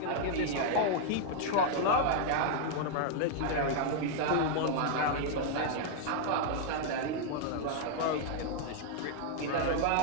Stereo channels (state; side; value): different; both; correlation -0.01